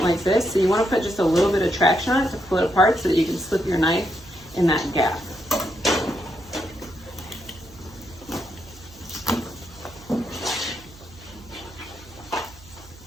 like this. So you wanna put just a little bit of traction on it to pull it apart so that you can slip your knife in that gap.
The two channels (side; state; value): right; noise; hum, 22 dB below the sound